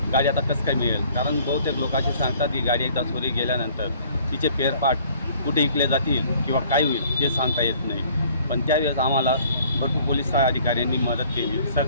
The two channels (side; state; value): both; inverted; correlation -0.56